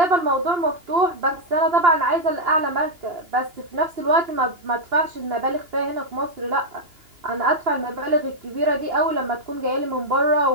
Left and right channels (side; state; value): left; late; 2.8 ms